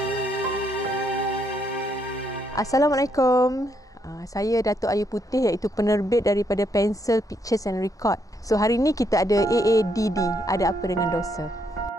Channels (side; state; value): both; normal; correlation 0.75